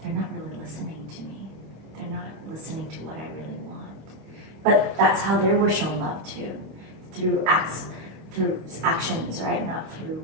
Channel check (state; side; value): late; left; 25 ms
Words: they're not really listening to me. They're not listening to what I really want. But that's how they were shown love too, through acts, through actions, right? Not through